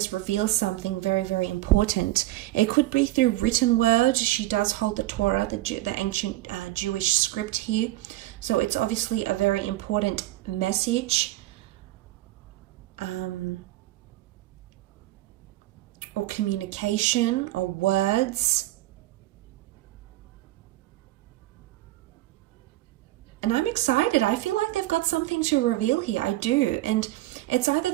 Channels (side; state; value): left; quieter; 17.0 dB